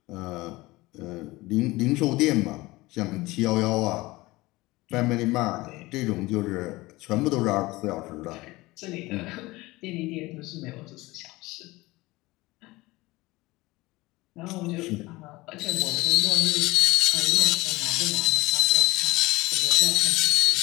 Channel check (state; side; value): quieter; right; 20.6 dB